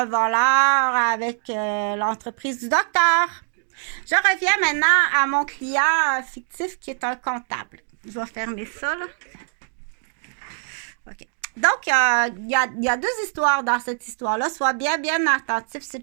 voleur avec l'entreprise du docteur. Je reviens maintenant à mon client fictif qui est un comptable. Je vais fermer ça, là. OK. Donc, il y a deux histoires dans cette histoire-là. Sois bien attentif,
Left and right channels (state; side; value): silent; left; digital silence